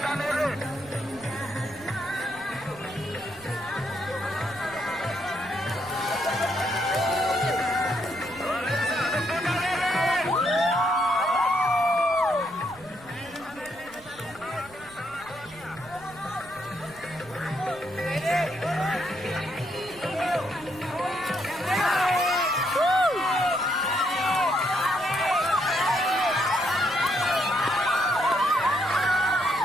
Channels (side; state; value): right; noise; rumble, 23 dB below the sound